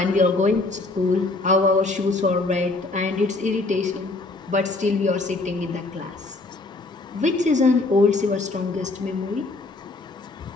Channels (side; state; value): right; quieter; 3.3 dB